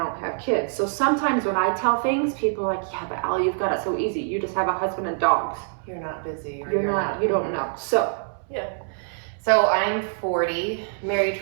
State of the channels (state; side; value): silent; left; 62 dB below the other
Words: have kids. So sometimes when I tell things, people are like, yeah, but Allie, you've got it so easy. You just have a husband and dogs. You're not busy. Or You're not, you don't know. So. Yeah. So I'm 40, married